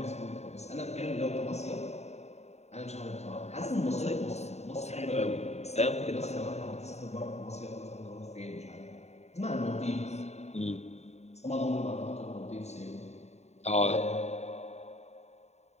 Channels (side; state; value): right; late; 0.32 ms